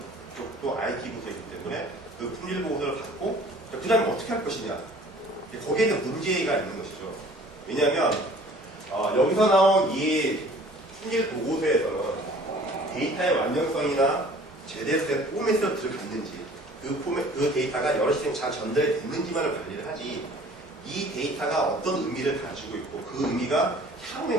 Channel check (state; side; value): normal; both; correlation 0.50